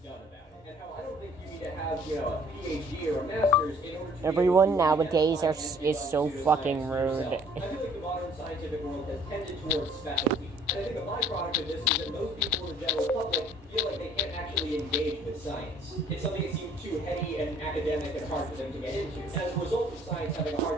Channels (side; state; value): both; normal; correlation 0.57